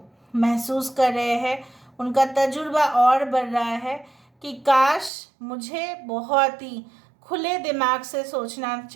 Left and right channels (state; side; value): drops out; left; at 5.1 s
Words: महसूस कर रहे हैं, उनका तजुर्बा और बढ़ रहा है कि काश मुझे बहुत ही खुले दिमाग से सोचना